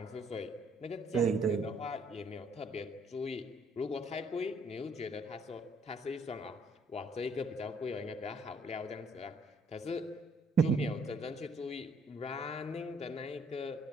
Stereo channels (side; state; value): both; normal; correlation 0.65